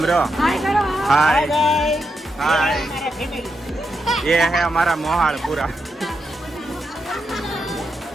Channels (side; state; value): both; normal; correlation 0.84